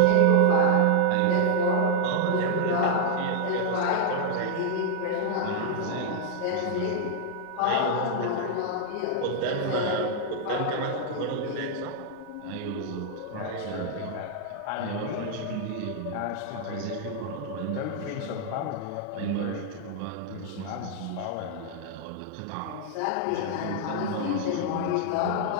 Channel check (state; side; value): different; both; correlation -0.01